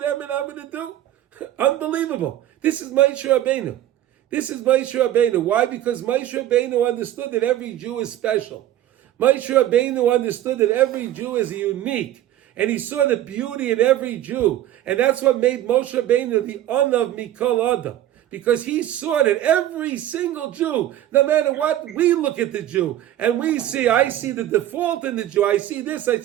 and I'm going to do. Unbelievable. This is Moshe Rabbeinu. This is Moshe Rabbeinu. Why? Because Moshe Rabbeinu understood that every Jew is special. Moshe Rabbeinu understood that every Jew is unique. And he saw the beauty in every Jew. And that's what made Moshe Rabbeinu the Anav Mikol Adam. Because he saw that every single Jew, no matter what, we look at the Jew. And we see, I see the default in the Jew. I see this, I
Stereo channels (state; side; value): quieter; left; 12.8 dB